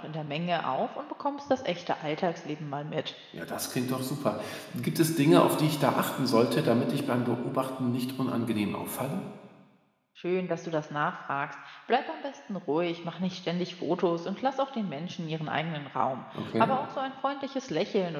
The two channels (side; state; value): both; identical; correlation 1.00